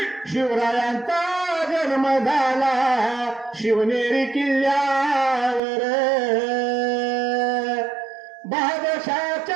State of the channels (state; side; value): drops out; left; at 5.6 s